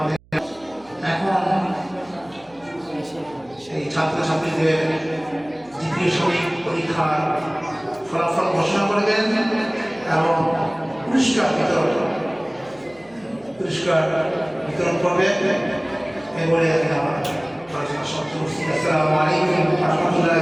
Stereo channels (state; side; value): noise; right; hum, 29 dB below the sound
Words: এখন সেই ছাত্রছাত্রীদের দ্বিতীয় শরীর পরীক্ষার ফলাফল ঘোষণা করবেন এবং পুরস্কার বিতরণ করবেন। এবারে আমার আলোচনা সমাপ্ত করছি। আসসালামু আলাইকুম ওয়া